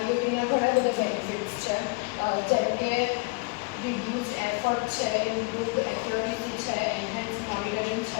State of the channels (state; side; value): quieter; right; 29.8 dB